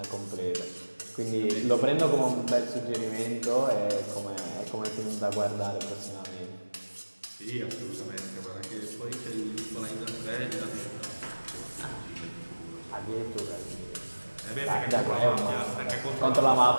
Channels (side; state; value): both; inverted; correlation -1.00